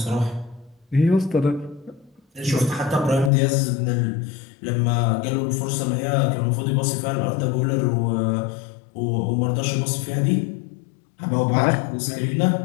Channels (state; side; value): drops out; right; at 3.3 s